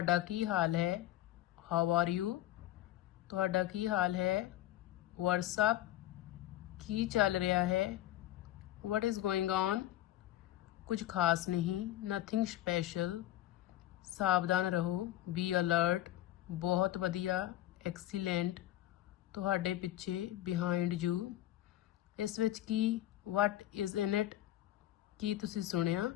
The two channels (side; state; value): right; quieter; 14.1 dB